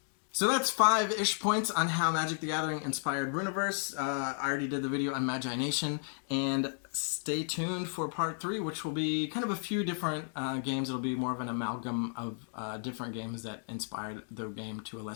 So that's 5-ish points on how Magic the Gathering inspired Rüniverse. I already did the video on Magi Nation, and stay tuned for part 3, which will be kind of a few different games. It'll be more of an amalgam of different games that inspired the game to a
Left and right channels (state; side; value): silent; right; 56 dB below the other